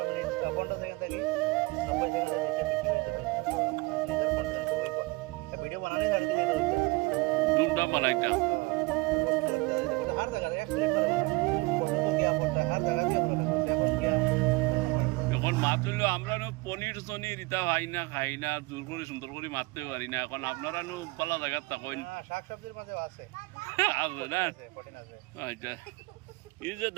वीडियो बनाने झाड़ी दिले तो धूमधाम बनाइता हर जगह एक प्लेट पर फोटो तो क्या पड़ता है हर जगह क्या बोला এখন क्या এখন মাত্রলো আমরা নো পনির সনির ইতা ভাই না খাই না জোর করে সুন্দর করে মারতে পারি না এখন আপনারা নো পালা জায়গা তাকইন শাক সবজির মাঝে আছে আছে না প্রোটিন আছে আচ্ছা এই যে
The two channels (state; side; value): quieter; left; 24.2 dB